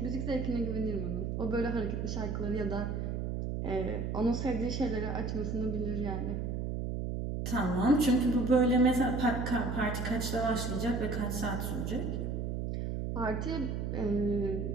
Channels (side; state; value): right; noise; hum, 2 dB below the sound